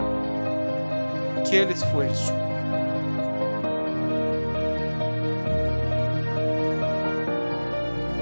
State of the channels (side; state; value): both; inverted; correlation -1.00